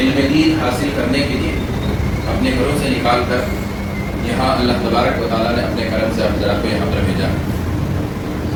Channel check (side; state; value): both; identical; correlation 1.00